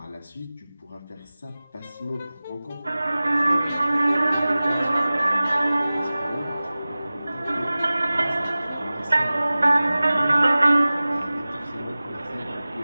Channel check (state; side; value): inverted; both; correlation -0.98